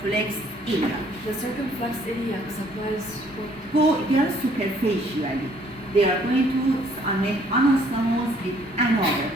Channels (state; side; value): normal; both; correlation 0.61